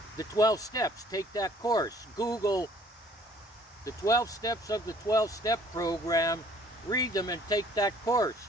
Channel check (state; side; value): normal; both; correlation 0.58